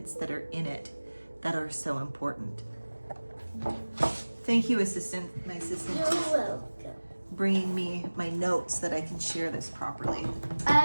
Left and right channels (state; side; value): inverted; both; correlation -1.00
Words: that are in it that are so important. Thank you, assistant. My assistant You're is welcome. bringing me my notes so that I can share this properly.